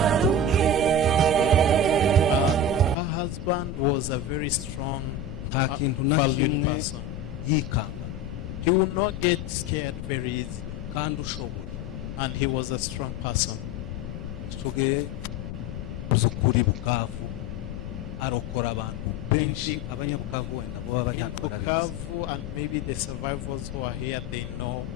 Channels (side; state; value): left; noise; rumble, 8 dB below the sound